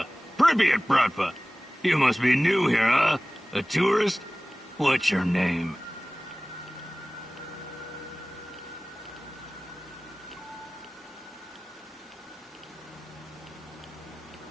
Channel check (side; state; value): both; normal; correlation 0.98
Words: Pripyat Bratva. You must be new here, huh? A tourist? What's your name?